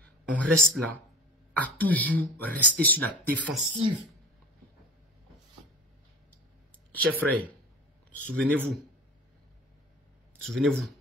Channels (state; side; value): normal; both; correlation 0.37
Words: on reste là à toujours rester sur la défensive? Chers frères, souvenez-vous